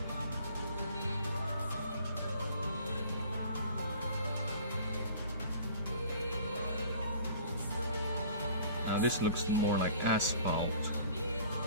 This looks more like asphalt.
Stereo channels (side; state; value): both; inverted; correlation -0.49